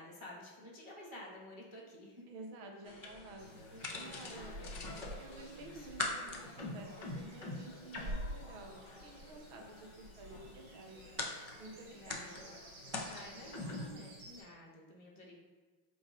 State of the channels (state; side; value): late; left; 5.3 ms